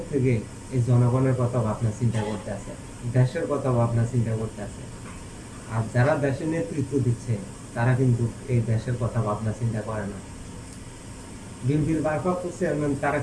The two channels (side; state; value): both; identical; correlation 1.00